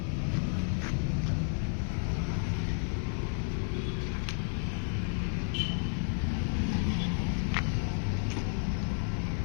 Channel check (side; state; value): right; silent; 57 dB below the other